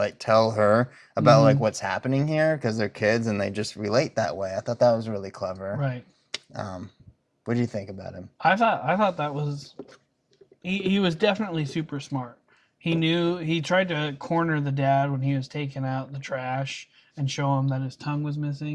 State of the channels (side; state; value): both; identical; correlation 1.00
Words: tell her about like Mhm. what's happening here because they're kids and they just relate that way. I thought that was really clever. Right. What do you think about him? I thought that was he was definitely super smart. He tried to corner the dad when he was taking out the trash and show him that his tongue was